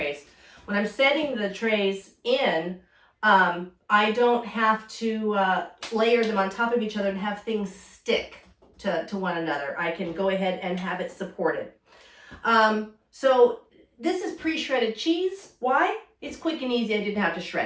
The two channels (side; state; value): both; identical; correlation 1.00